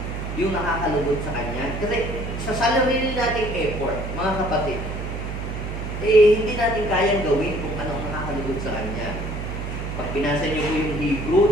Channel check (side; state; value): right; noise; hum, 5 dB below the sound